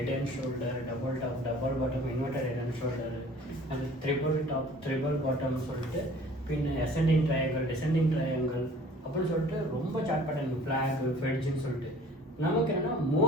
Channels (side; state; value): both; normal; correlation 0.50